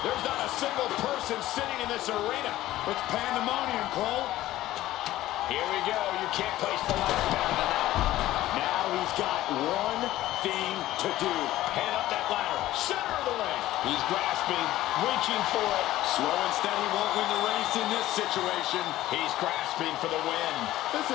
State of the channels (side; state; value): right; quieter; 15.2 dB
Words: There's not a single person sitting in this arena. It's pandemonium, Cole. Here we go. You can't place the ladder better than that. Now he's got one thing to do. Head up that ladder. Center of the ring. He's grasping, reaching for it. Slow and steady won't win the race in this situation. He's grasping for the win. This